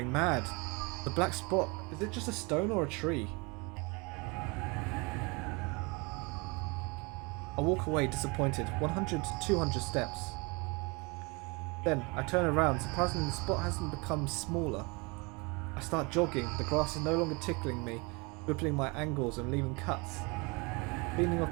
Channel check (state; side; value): quieter; left; 28.7 dB